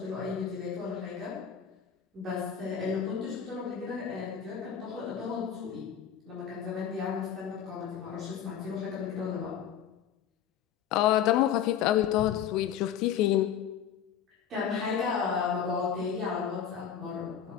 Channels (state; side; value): quieter; right; 8.6 dB